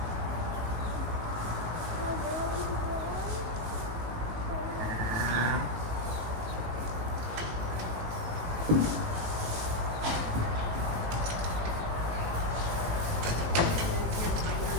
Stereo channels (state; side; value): late; left; 18 ms